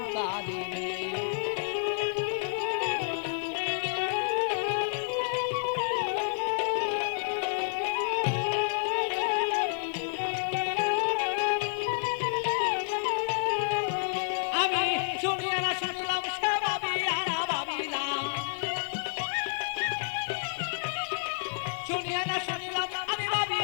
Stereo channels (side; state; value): right; silent; digital silence